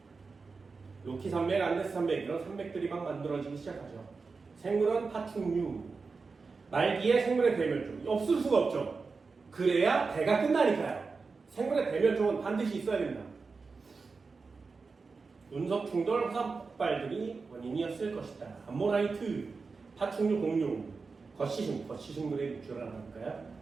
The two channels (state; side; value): quieter; left; 4.5 dB